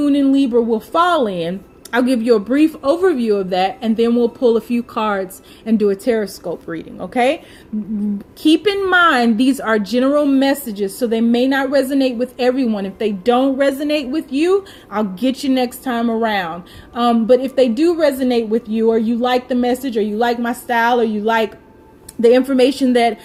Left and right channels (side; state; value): both; identical; correlation 1.00